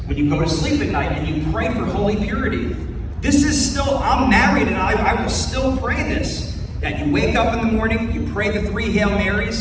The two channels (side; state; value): both; identical; correlation 1.00